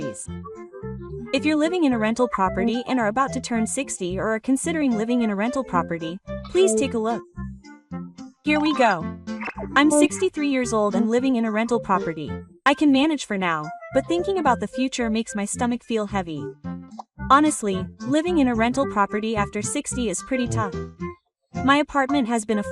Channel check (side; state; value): both; identical; correlation 1.00